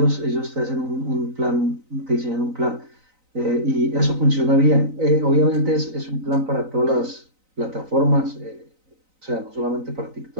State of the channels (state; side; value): late; left; 3.9 ms